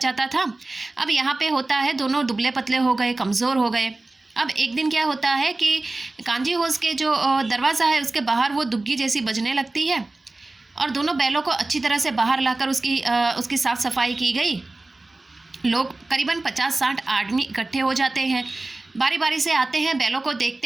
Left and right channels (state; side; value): quieter; left; 3.0 dB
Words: था। अब यहाँ पे होता है दोनों दुबले पतले हो गए, कमज़ोर हो गए। अब एक दिन क्या होता है कि कांजी होस के जो दरवाज़ा है उसके बाहर वो दुग्गी जैसी बजने लगती है और दोनों बैलों को अच्छी तरह से बाहर लाकर उसकी साफ़ सफाई की गई। लोग करीबन 50-60 आदमी इकट्ठे हो जाते हैं, बारी बारी से आते हैं, बैलों को